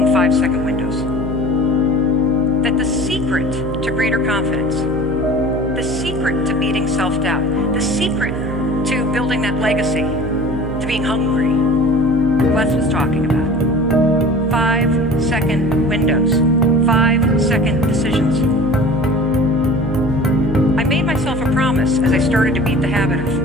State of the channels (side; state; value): right; noise; hum, 8 dB below the sound